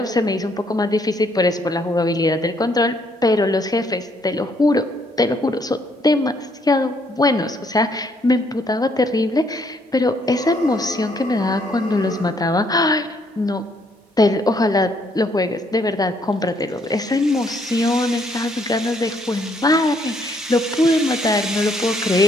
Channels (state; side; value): normal; both; correlation 0.69